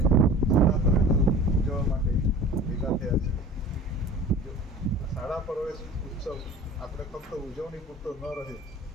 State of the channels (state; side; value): normal; both; correlation 0.41